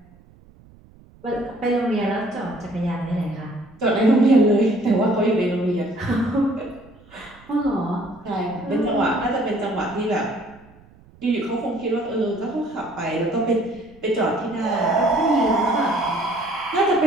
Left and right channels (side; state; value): right; noise; rumble, 26 dB below the sound